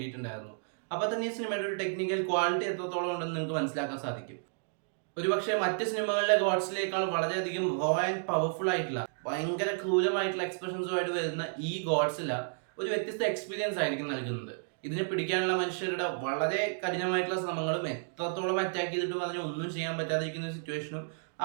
അപ്പോൾ തന്നെ ഈ സിനിമയുടെ ഒരു ടെക്നിക്കൽ ക്വാളിറ്റി എത്രത്തോളം ഉണ്ടെന്ന് നിങ്ങൾക്ക് മനസ്സിലാക്കാൻ സാധിക്കും. ഒരുപക്ഷെ മറ്റ് സിനിമകളിലെ ഗോഡ്സിലേക്കാൾ വളരെയധികം റോ ആൻഡ് പവർഫുൾ ആയിട്ടുള്ള ഭയങ്കര ക്രൂരമായിട്ടുള്ള എക്സ്പ്രഷൻസുമായിട്ട് വരുന്ന ഈ ഗോഡ്സില ഒരു വ്യത്യസ്ത എക്സ്പീരിയൻസ് ആയിരിക്കും നൽകുന്നത്. ഇതിനെ പിടിക്കാനുള്ള മനുഷ്യരുടെ വളരെ കഠിനമായിട്ടുള്ള ശ്രമങ്ങളും എത്രത്തോളം അറ്റാക്ക് ചെയ്തിട്ടും അതിനെ ഒന്നും ചെയ്യാൻ പറ്റാതിരിക്കുന്ന ഒരു സിറ്റുവേഷനും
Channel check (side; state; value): left; silent; digital silence